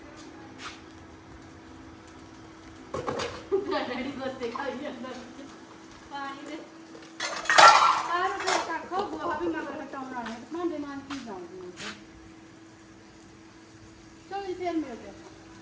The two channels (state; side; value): identical; both; correlation 1.00